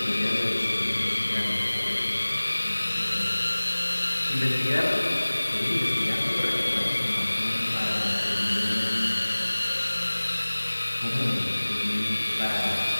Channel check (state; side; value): inverted; both; correlation -1.00